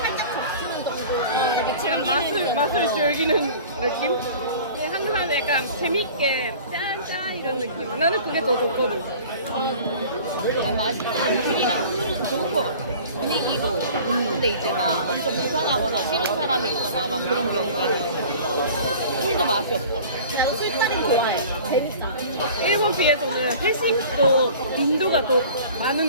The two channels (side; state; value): both; inverted; correlation -0.44